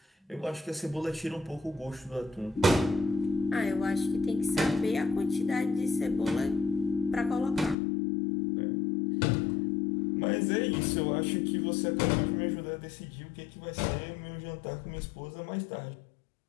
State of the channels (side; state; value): right; drops out; at 7.8 s